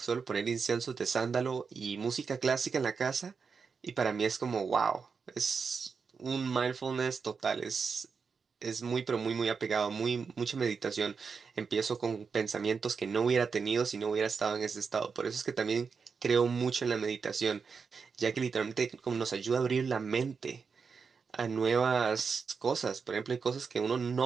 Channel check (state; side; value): quieter; left; 5.5 dB